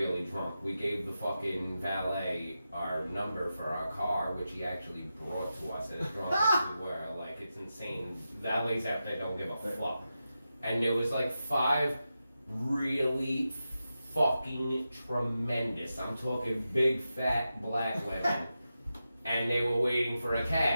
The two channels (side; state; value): both; inverted; correlation -0.90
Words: drunk. We gave the fucking valet our number for our car, which he actually brought to us as drunk as we were. Like, it's insane. Valets out there don't give a fuck. And there was like 5 really fucking tremendous, I'm talking big fat black women, and they were waiting for a